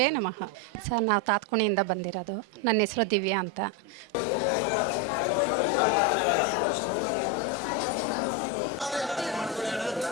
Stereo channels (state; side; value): normal; both; correlation 0.08